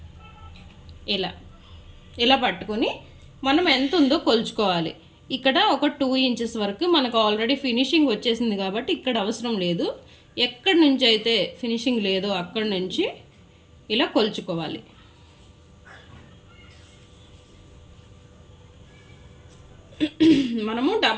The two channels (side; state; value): both; identical; correlation 1.00